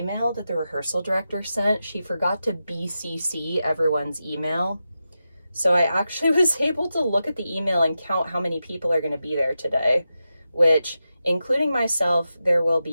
that the rehearsal director sent, she forgot to BCC everyone's email. So I actually was able to look at the email and count how many people are going to be there today, which, including myself, there will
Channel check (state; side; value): inverted; both; correlation -0.90